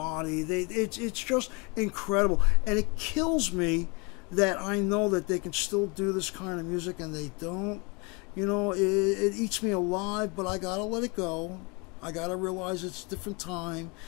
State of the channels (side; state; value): right; quieter; 29.8 dB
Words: It's just incredible, and it kills me that I know that they can still do this kind of music and they don't. It eats me alive, but I gotta let it go. I gotta realize it's a different time,